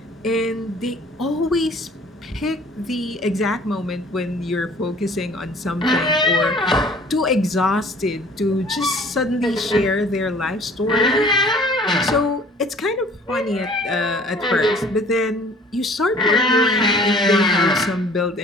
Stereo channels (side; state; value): both; normal; correlation 0.52